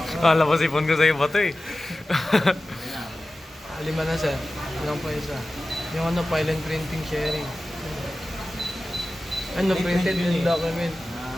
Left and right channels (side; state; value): both; normal; correlation 0.95